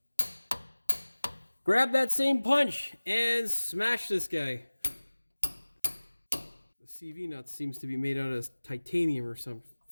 Grab that same punch and smash this guy. The CV nut seems to be made out of titanium or some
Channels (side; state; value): both; inverted; correlation -1.00